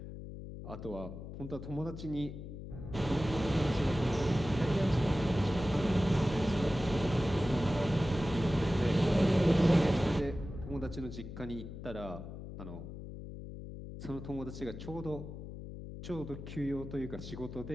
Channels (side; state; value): left; noise; hum, 10 dB below the sound